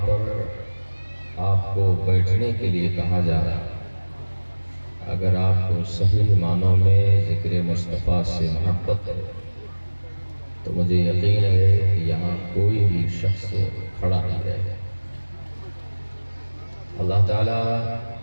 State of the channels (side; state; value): both; inverted; correlation -1.00